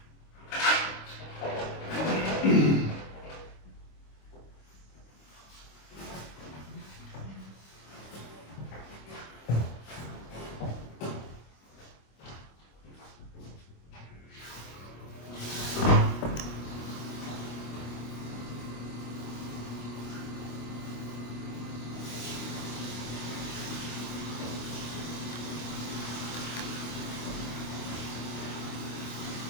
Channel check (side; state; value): right; late; 25 ms